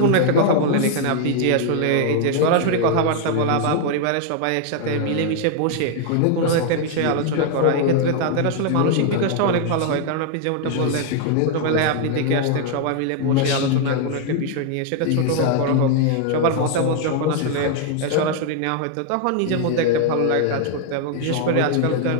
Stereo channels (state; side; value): different; both; correlation 0.00